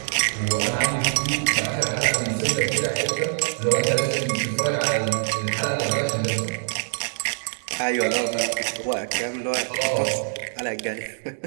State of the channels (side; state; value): left; silent; digital silence